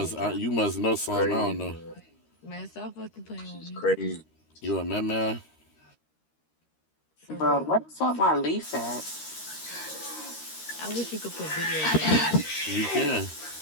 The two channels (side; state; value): right; late; 13 ms